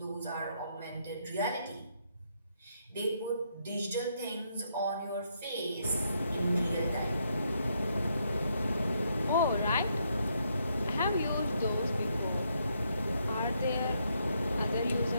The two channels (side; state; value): both; inverted; correlation -0.75